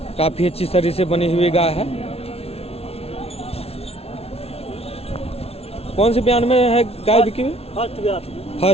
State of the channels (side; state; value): right; late; 0.30 ms